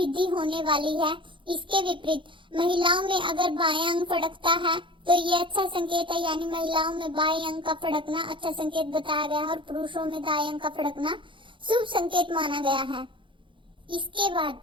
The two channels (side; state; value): left; late; 0.24 ms